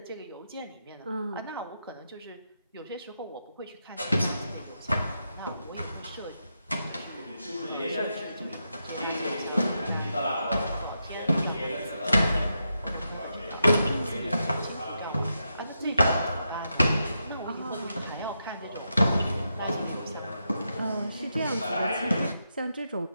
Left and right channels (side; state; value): both; inverted; correlation -0.85